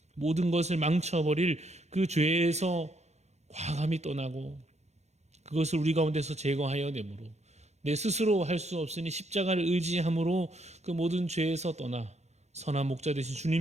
모든 것을 망쳐버릴 그 죄에서 과감히 떠나고 그것을 우리 가운데서 제거하여 내므로 내 스스로 할 수 없으니 십자가를 의지함으로 그 모든 죄에서 떠나 선한 목자 되신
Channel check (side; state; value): left; late; 0.32 ms